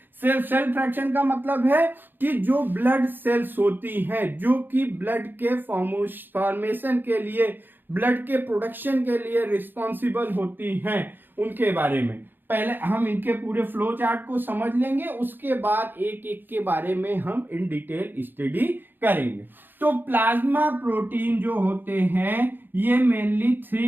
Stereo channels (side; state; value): left; late; 0.094 ms